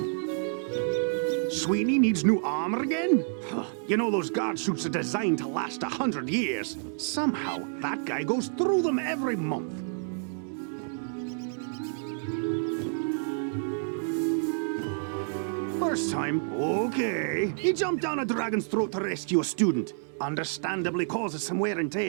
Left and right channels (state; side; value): silent; left; digital silence